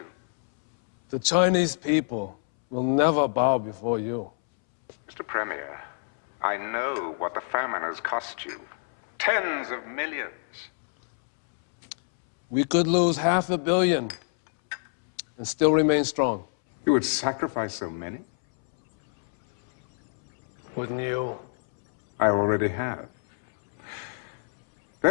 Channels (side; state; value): right; silent; 61 dB below the other